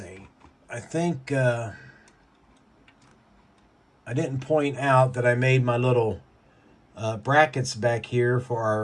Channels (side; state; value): both; identical; correlation 1.00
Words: I think I didn't point out that I made my little brackets back here